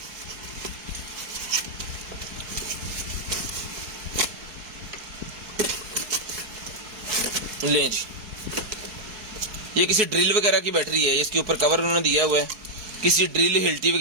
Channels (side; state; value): left; late; 4.7 ms